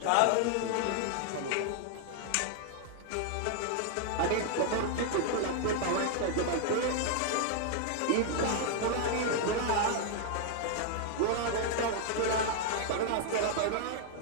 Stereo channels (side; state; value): both; different; correlation 0.00